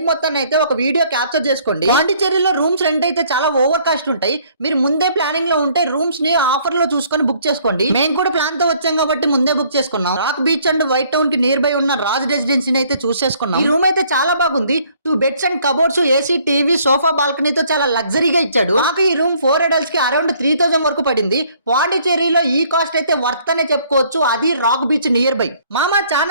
మొత్తాన్ని అయితే ఒక వీడియో క్యాప్చర్ చేసుకోండి. పాండిచేరిలో రూమ్స్ రెంట్ అయితే చాలా ఓవర్ కాస్ట్ ఉంటాయి. మీరు ముందే ప్లానింగ్ లో ఉంటే రూమ్స్ ని ఆఫర్ లో చూసుకొని బుక్ చేసుకోండి. మేము కూడా ప్లాన్ తో వచ్చాం కాబట్టి ముందే బుక్ చేసుకున్నాం. Rock beach and white town కి నియర్ బై ఉన్న రాజ్ రెసిడెన్సీని అయితే చూసేసుకున్నాం. ఈ రూమ్ అయితే చాలా బాగుంది. 2 beds and cupboards, AC, TV, sofa, బాల్కనీతో చాలా లగ్జరీగా ఇచ్చాడు. మాకు ఈ రూమ్ 4 adults కి అరౌండ్ 3000 వరకు పడింది. పాండిచేరిలో ఈ కాస్ట్ అయితే వర్త్ అనే చెప్పుకోవచ్చు. అది రాక్ బీచ్ నియర్ బై. మామ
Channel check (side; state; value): both; inverted; correlation -0.62